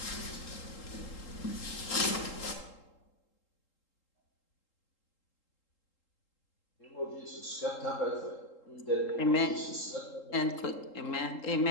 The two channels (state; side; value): late; right; 3.8 ms